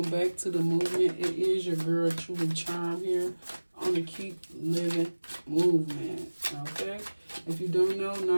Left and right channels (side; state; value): both; inverted; correlation -1.00